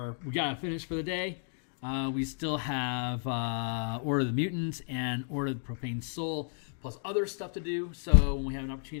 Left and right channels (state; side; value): silent; right; digital silence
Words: we got to finish for the day. We still have Order of the Mutants and Order of the Profane Soul. plus other stuff to do. So when we have an